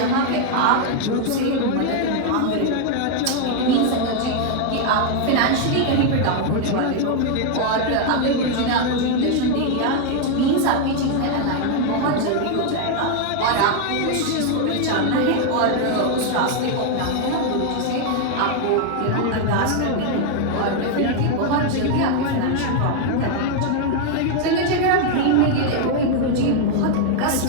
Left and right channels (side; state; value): both; different; correlation 0.00